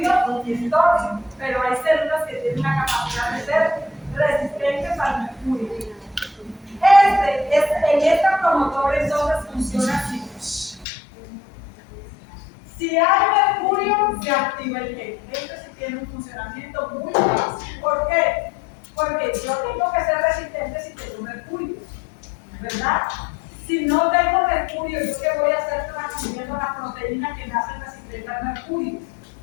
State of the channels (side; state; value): right; drops out; at 10.9 s